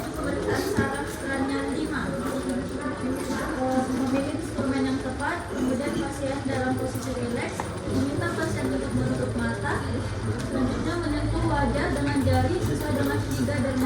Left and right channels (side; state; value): both; identical; correlation 1.00